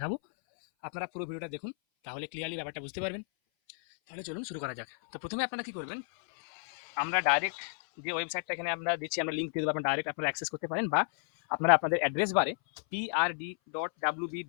আপনারা পুরো ভিডিওটা দেখুন, তাহলে ক্লিয়ারলি ব্যাপারটা বুঝতে পারবেন। তাহলে চলুন শুরু করা যাক। তো প্রথমে আপনারা কি করবেন, আমরা ডাইরেক্ট যে ওয়েবসাইটটা এখানে আমরা দিচ্ছি, আমরা লিঙ্ক দিয়ে দেবো, আপনারা ডাইরেক্ট আপনারা অ্যাক্সেস করতে পারেন, বা আপনারা আপনাদের অ্যাড্রেস বারে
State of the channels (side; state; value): right; silent; 56 dB below the other